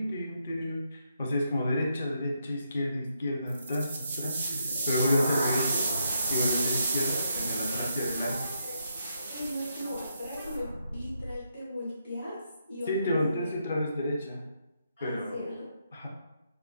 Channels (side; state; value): both; inverted; correlation -0.78